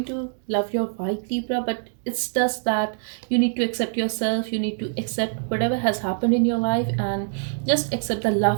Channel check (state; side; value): silent; left; digital silence